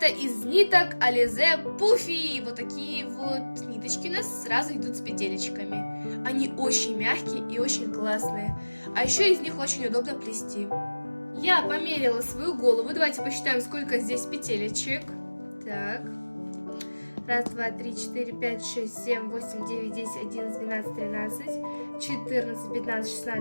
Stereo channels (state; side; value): inverted; both; correlation -1.00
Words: из ниток Alize Puffy. Вот такие вот ниточки у нас сразу идут с петелечками. Они очень мягкие и очень классные. А еще из них очень удобно плести. Я померила свою голову. Давайте посчитаем, сколько здесь петелечек. Так. Раз, два, три, четыре, пять, шесть, семь, восемь, девять, десять, 11, 12, 13, 14, 15,